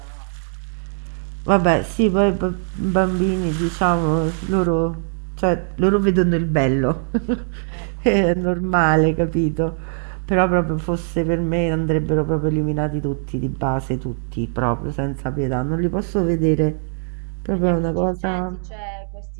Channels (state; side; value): silent; left; 60 dB below the other